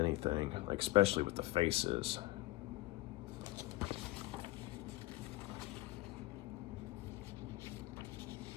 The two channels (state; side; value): quieter; right; 18.1 dB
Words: like especially with the faces.